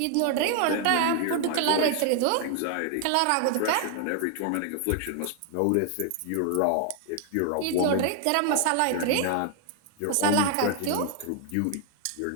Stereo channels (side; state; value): both; different; correlation 0.00